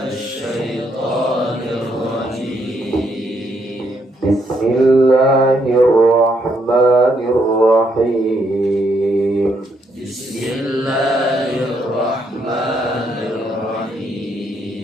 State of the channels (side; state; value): both; normal; correlation 0.74